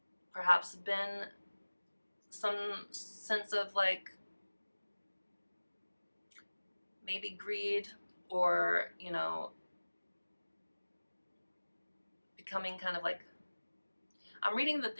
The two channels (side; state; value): both; inverted; correlation -1.00